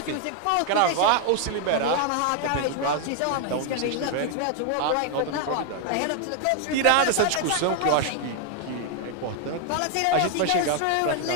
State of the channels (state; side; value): different; both; correlation 0.00